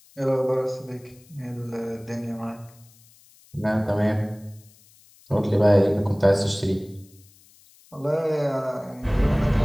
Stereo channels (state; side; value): noise; left; hiss, 28 dB below the sound